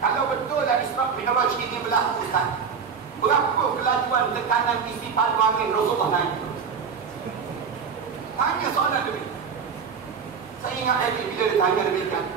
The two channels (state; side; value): quieter; left; 6.2 dB